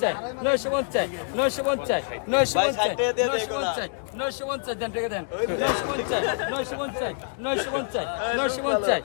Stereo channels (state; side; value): silent; right; digital silence